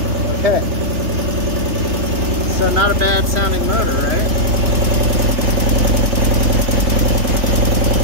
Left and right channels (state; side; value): late; left; 3.3 ms